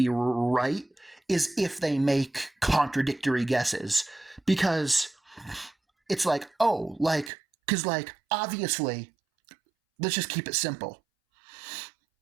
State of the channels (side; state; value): left; drops out; at 7.3 s